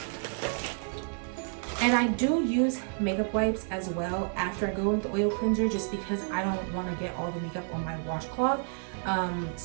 And I do use makeup wipes as well after I go with the oil cleanser, just because I don't want to get all the makeup on my washcloth.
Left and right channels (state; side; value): silent; left; 58 dB below the other